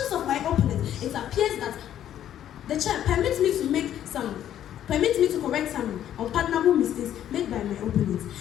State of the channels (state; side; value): quieter; right; 11.0 dB